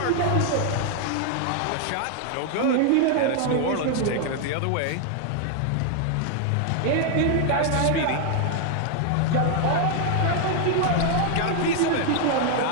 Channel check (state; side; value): different; both; correlation 0.00